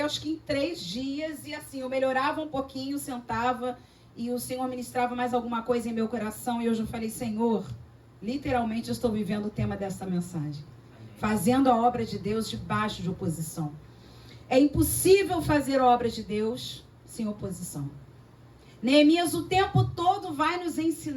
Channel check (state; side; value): identical; both; correlation 1.00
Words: que em 3 dias, e assim, eu melhorava um pouquinho, sentava, e o Senhor ministrava mais alguma coisa em meu coração, e hoje eu falei, Senhor, literalmente eu estou vivendo o tema dessa mensagem. Fazendo a obra de Deus debaixo de oposição. É impossível fazer a obra de Deus sem oposição. Neemias o tempo todo vai nos